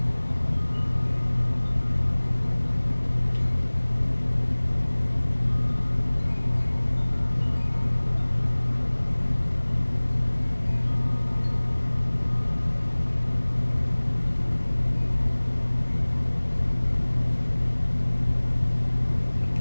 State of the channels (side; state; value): both; inverted; correlation -1.00